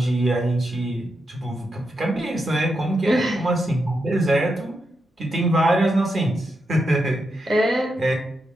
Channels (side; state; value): both; normal; correlation 0.85